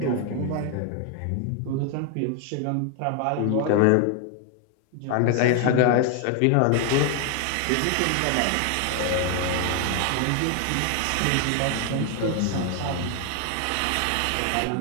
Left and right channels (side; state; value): both; different; correlation 0.01